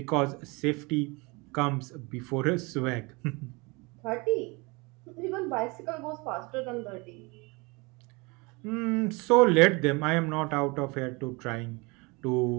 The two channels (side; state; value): left; quieter; 26.9 dB